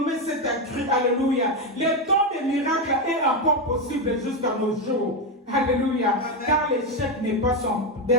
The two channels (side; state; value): both; normal; correlation 0.09